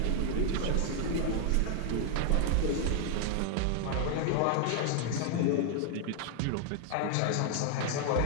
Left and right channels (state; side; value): different; both; correlation 0.00